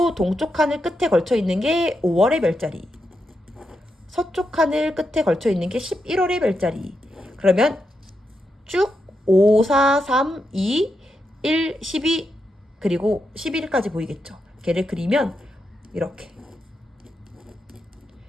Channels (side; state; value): both; normal; correlation 0.85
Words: 동쪽 하늘 끝에 걸쳐 있는 게 5월의 별자리, 서쪽 하늘 끝에 걸쳐 있는 게 11월의 별자리. 그러면 쭉 5, 4, 3, 2, 1, 12 그리고 11까지 보이겠죠. 걔를 그리면 이렇게